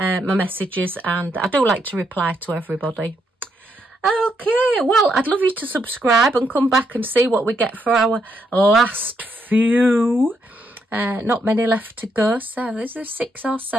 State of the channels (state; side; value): normal; both; correlation 0.78